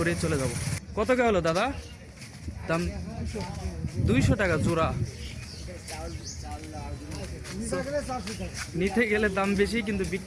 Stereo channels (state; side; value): identical; both; correlation 1.00